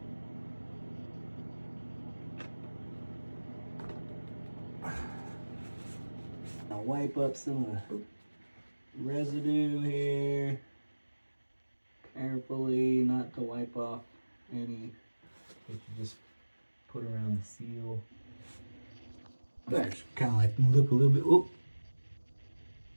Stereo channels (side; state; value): both; inverted; correlation -1.00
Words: I'll wipe up some of the residue here. Carefully, not to wipe off any that you just put around the seal. That's kind of like look a little bit. Oh.